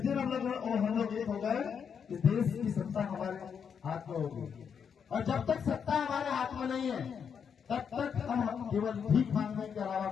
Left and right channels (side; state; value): right; quieter; 7.1 dB